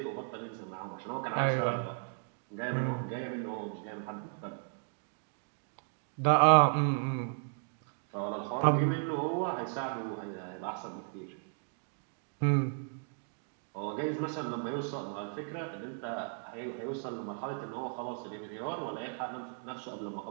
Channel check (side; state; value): left; silent; 54 dB below the other